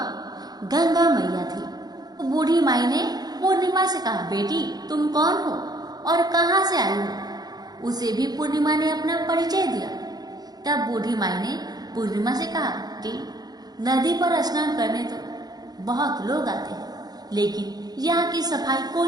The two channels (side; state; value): left; late; 0.19 ms